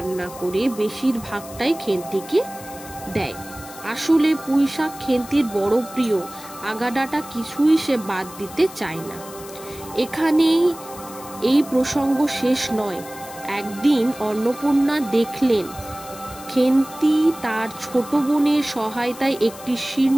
করে বেশিরভাগটাই খেন্তিকে দেয়। আসলে পুঁইশাক খেন্তির বড় প্রিয়, আগাডাটা কিছুই সে বাদ দিতে চায় না। এখানেই এই প্রসঙ্গ শেষ নয়। একদিন অন্নপূর্ণা দেখলেন খেন্তি তার ছোট বোনের সহায়তায় একটি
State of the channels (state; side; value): noise; left; hiss, 16 dB below the sound